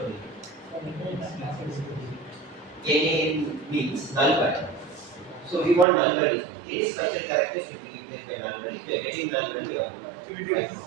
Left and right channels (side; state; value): left; drops out; at 5.9 s